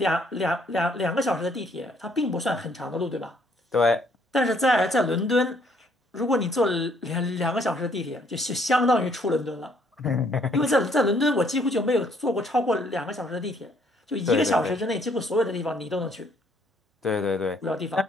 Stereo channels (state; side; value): normal; both; correlation 0.66